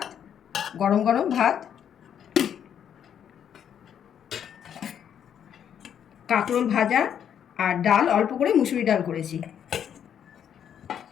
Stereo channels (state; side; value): quieter; right; 8.9 dB